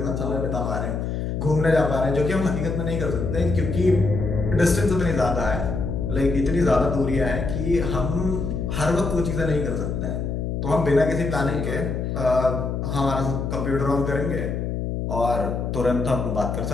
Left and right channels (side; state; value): left; noise; hum, 2 dB below the sound